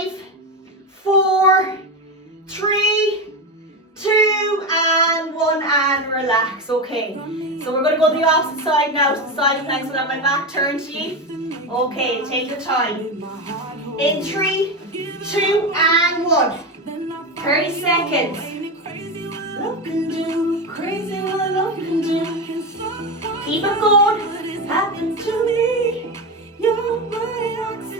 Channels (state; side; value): normal; both; correlation 0.17